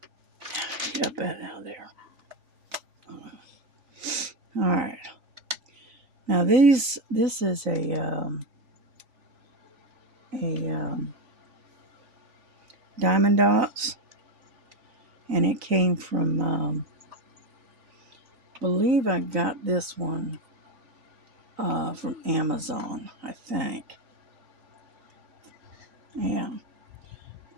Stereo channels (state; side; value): late; left; 3.9 ms